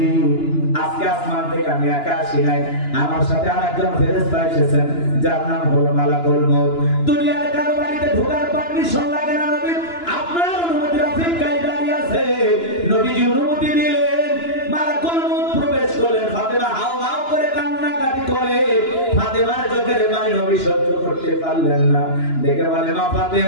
আজকে আসমান থেকে আমি একা আসি নাই, আমার সাথে আরেকজন ফেরেশতা এসেছেন, যার নাম হলো মালাকুল মউত। দুনিয়ার কারো বাড়িতে ঢোকার পারমিশন লাগে না নবী, আপনার অনুমতির অপেক্ষায় দাঁড়িয়ে আছে। নবীজি অনুমতি দিলেন, মালাকুল মউত প্রবেশ করলেন। ফাতেমা হাউ হাউ করে কান্নাকাটি করে। ফাতেমার চোখের পানি নবী সহ্য করতে পারলেন না, দেখে বলে, মা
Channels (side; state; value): right; late; 2.9 ms